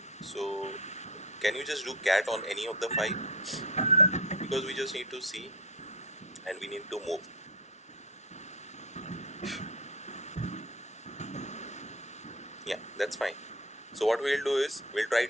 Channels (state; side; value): normal; both; correlation 0.25